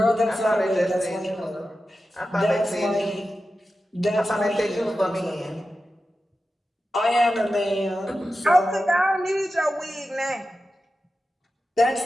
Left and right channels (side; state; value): both; normal; correlation 0.92